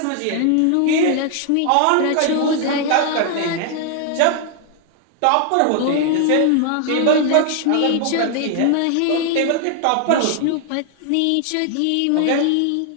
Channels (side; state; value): both; different; correlation 0.00